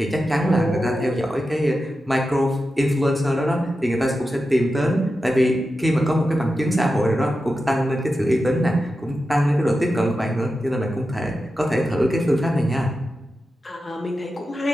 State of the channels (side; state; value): both; normal; correlation 0.91